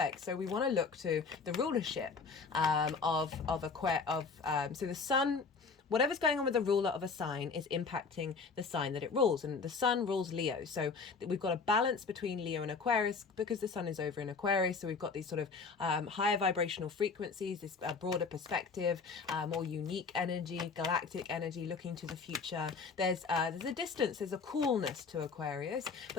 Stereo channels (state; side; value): quieter; right; 4.8 dB